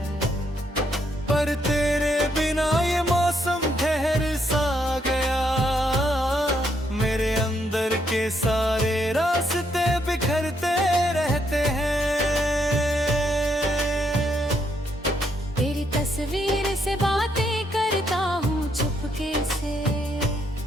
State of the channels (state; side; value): normal; both; correlation 0.75